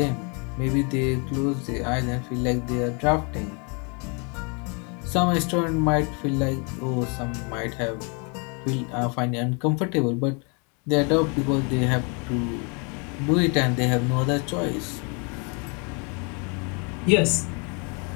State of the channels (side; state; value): right; quieter; 34.4 dB